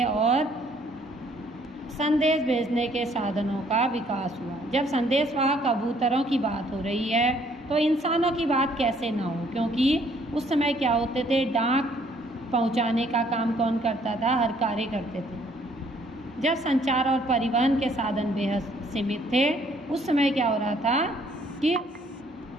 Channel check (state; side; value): normal; both; correlation 0.63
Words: और संदेश भेजने के साधनों का विकास हुआ। जब संदेशवाहक कबूतरों की बात हो रही है तो इंसानों की बात कैसे ना हो, क्योंकि उस समय क्या होते थे, डाक पहुंचाने का काम कौन करता था? हर कार्य करते थे। जब संचार और परिवहन के साधन बेहद सीमित थे, उस समय क्या हो रहा था कि